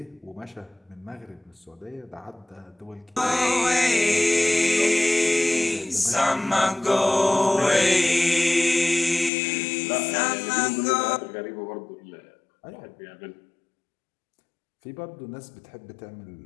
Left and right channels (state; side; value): drops out; right; at 9.3 s